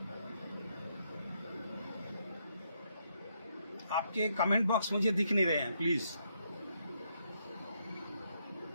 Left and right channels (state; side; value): inverted; both; correlation -0.76